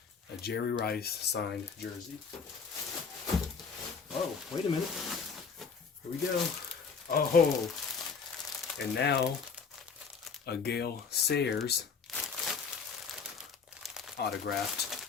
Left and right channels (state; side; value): quieter; right; 5.6 dB